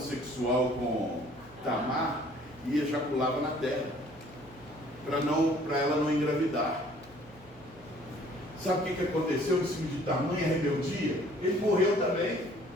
sexual com Tamar e ejaculava na terra, para ela não engravidar. Sabe o que aconteceu em cima de tamanha rebeldia? Ele morreu também.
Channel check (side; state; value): both; normal; correlation 0.56